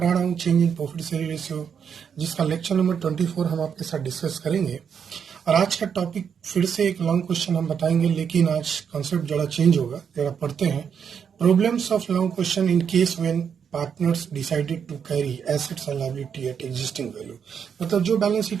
रहा हूँ change in profit sharing ratio, जिसका lecture number 24 हम आपके साथ discuss करेंगे। और आज का टॉपिक फिर से एक लॉन्ग क्वेश्चन हम बताएंगे, लेकिन आज कॉन्सेप्ट जरा चेंज होगा। जरा पढ़ते हैं। Problems of long question in case when partners decided to carry assets and liability at existing value. मतलब जो बैलेंस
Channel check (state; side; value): quieter; left; 7.3 dB